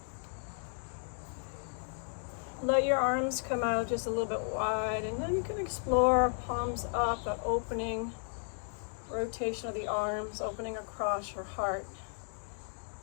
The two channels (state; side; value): silent; right; 55 dB below the other